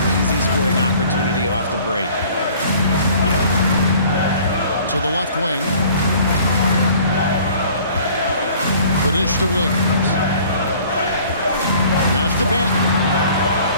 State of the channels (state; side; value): inverted; both; correlation -0.51